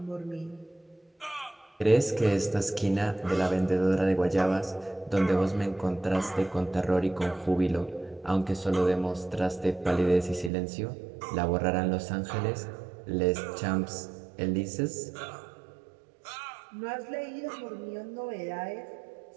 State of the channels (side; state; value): left; drops out; at 10.5 s